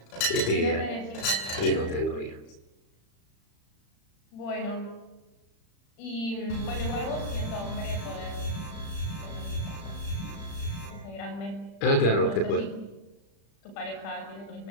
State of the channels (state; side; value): late; right; 35 ms